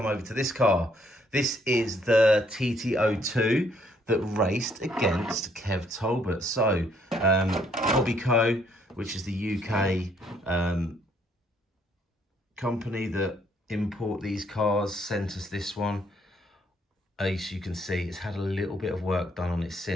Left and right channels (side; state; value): both; normal; correlation 0.68